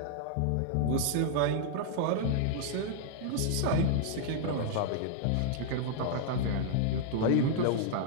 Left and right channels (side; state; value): both; different; correlation -0.01